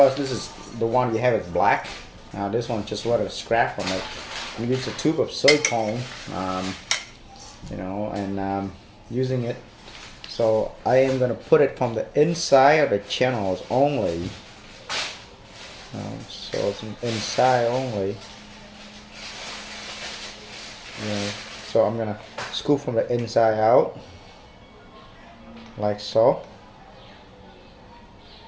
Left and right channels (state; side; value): identical; both; correlation 1.00